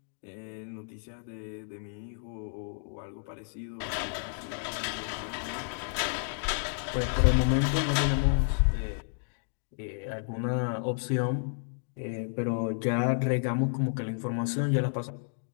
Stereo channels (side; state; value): right; silent; digital silence